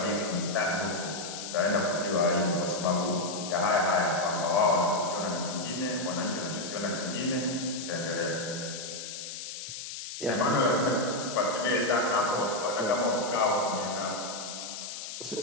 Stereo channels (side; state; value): left; noise; hiss, 8 dB below the sound